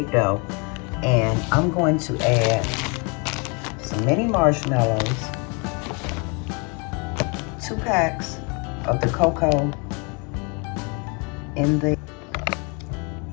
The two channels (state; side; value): quieter; right; 32.5 dB